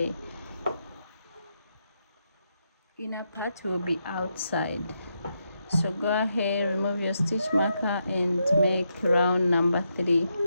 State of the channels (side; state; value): both; inverted; correlation -0.82